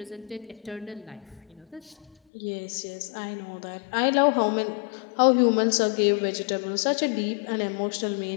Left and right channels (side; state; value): right; drops out; at 2.1 s